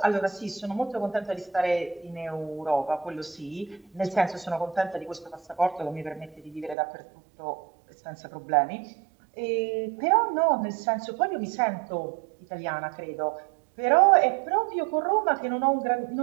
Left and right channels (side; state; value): left; drops out; at 6.8 s